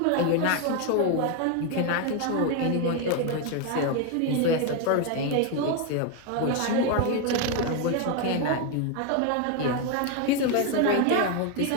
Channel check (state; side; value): different; both; correlation 0.01